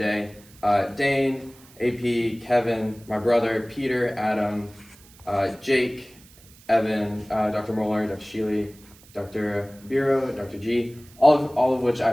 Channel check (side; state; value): right; noise; hiss, 25 dB below the sound